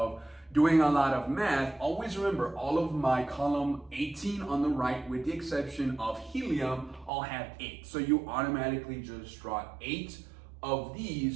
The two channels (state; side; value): drops out; left; at 7.1 s